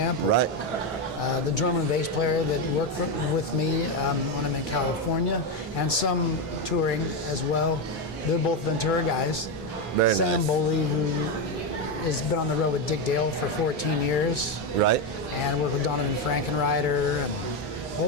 Right. The drummer and bass player that worked with me when I'm in California, and some touring as well. They're both Ventura guys. Very Sam nice. Boley, who has been on the road with Dick Dale for 14 years. Right. And worked with Donovan Frankenreiter and a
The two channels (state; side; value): normal; both; correlation 0.09